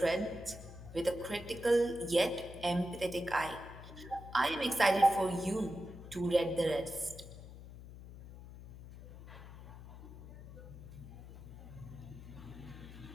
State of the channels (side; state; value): left; noise; hum, 14 dB below the sound